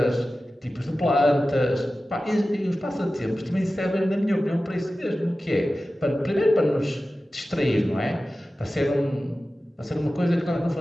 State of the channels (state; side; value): normal; both; correlation 0.95